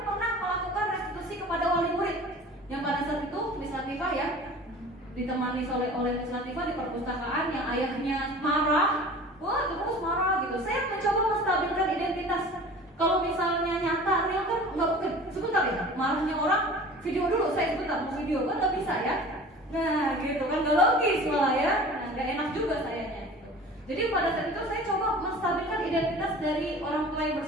pernah melakukan restitusi kepada wali murid. Yang pada saat itu Miss Latifah ya, ditemani oleh Miss Latifah di perpustakaan yang ayahnya marah, wah terus marah gitu. Saya mencoba menstabilkan identitas. Kalau misalnya nyata real kan nggak mungkin. Sebentar ya, marahnya orang video dulu, saya sebentar mau video kan nggak bisa ya. Nah gitu kan, nggak logis malah ya, nggak enak juga sayanya gitu. Jadi pada saat itu saya coba menstabilkan identitas dari orang tua yang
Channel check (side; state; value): both; normal; correlation 0.42